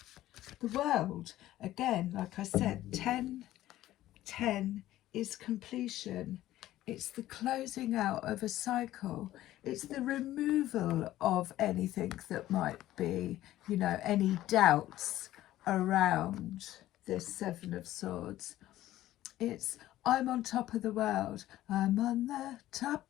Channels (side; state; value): right; quieter; 14.5 dB